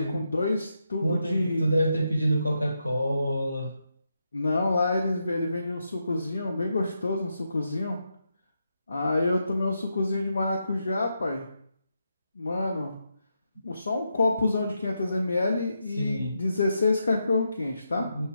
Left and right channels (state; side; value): inverted; both; correlation -0.84